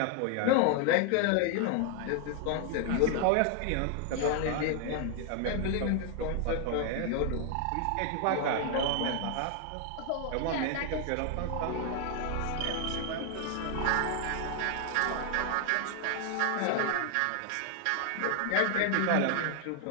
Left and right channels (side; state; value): both; different; correlation 0.00